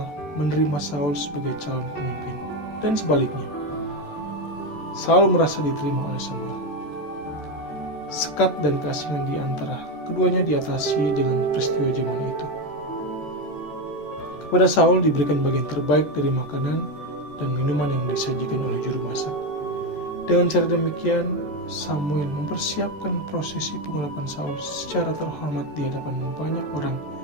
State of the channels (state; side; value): late; right; 14 ms